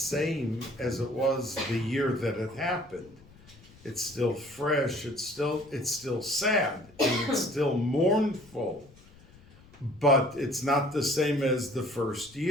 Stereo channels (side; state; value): left; noise; rumble, 25 dB below the sound